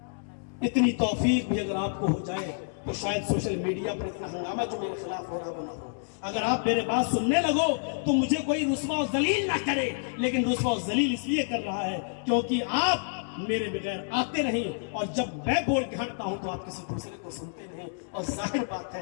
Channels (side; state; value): right; silent; digital silence